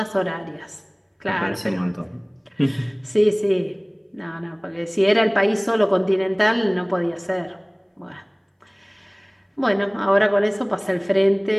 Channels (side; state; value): both; identical; correlation 1.00